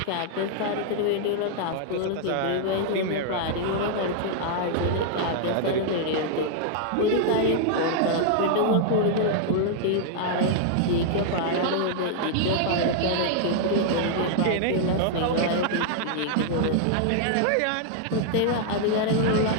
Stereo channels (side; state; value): both; different; correlation -0.01